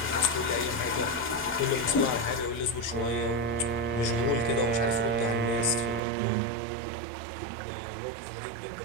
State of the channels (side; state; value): left; drops out; at 6.0 s